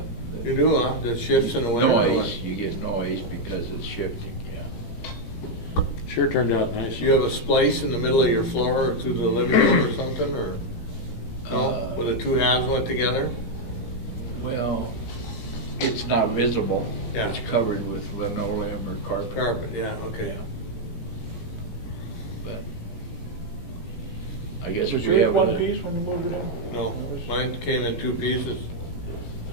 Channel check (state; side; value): late; right; 17 ms